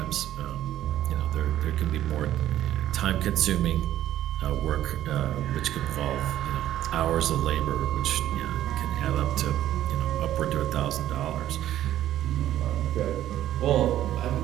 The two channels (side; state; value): left; quieter; 12.6 dB